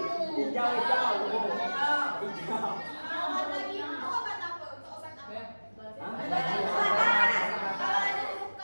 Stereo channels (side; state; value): both; inverted; correlation -1.00